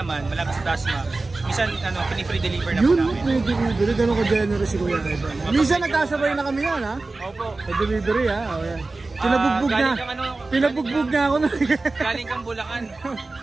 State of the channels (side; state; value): left; quieter; 3.4 dB